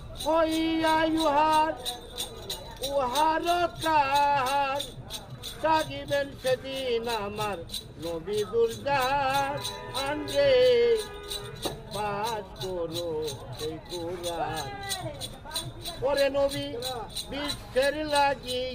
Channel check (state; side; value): identical; both; correlation 1.00